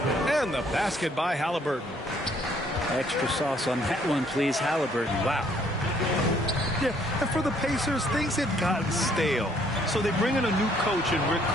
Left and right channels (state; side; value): normal; both; correlation 0.64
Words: And the basket by Halliburton. Extra sauce on that one, please, Halliburton. Wow. Yeah, and for the Pacers, things had gotten stale. So they bring in a new coach in Rick